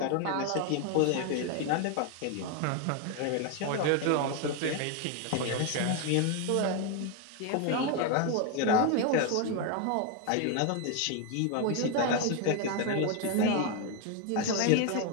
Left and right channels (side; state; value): both; different; correlation 0.01